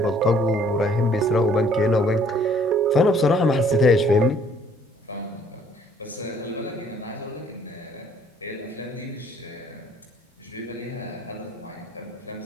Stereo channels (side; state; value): both; normal; correlation 0.60